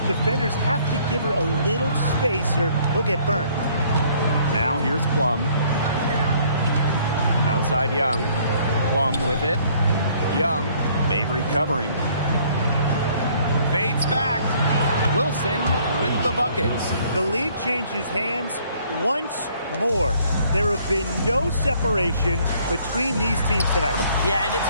Defenders have to give her a little space or they'll get burned. Now here's Plum. Outside Young. Plum with it. Young. Mabry covering. Fades back. Wilson with the bucket. The lead changes hands once more. There have been no separation between these teams tonight. Yeah, and it's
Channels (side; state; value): both; inverted; correlation -0.61